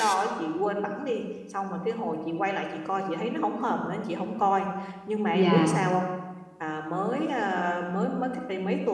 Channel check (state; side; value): identical; both; correlation 1.00